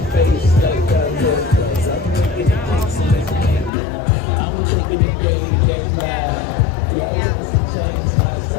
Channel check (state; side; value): drops out; right; at 3.7 s